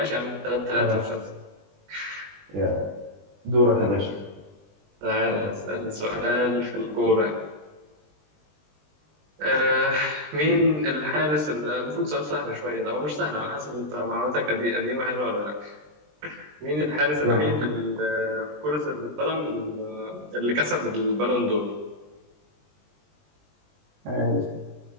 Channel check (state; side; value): late; left; 20 ms